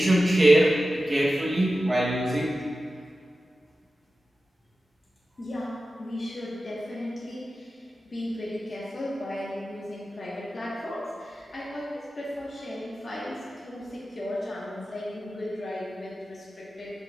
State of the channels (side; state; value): both; normal; correlation 0.93